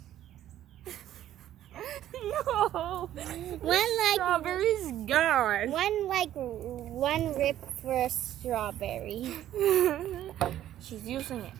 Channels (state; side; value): quieter; left; 12.2 dB